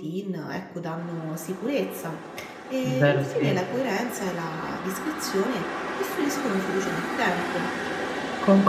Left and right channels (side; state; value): both; identical; correlation 1.00